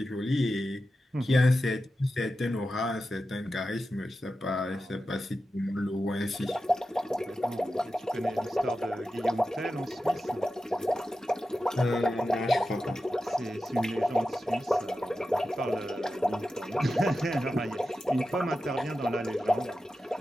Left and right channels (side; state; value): both; normal; correlation 0.92